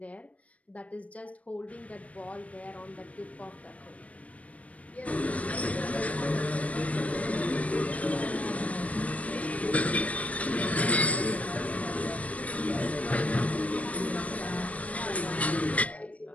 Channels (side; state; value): right; late; 0.067 ms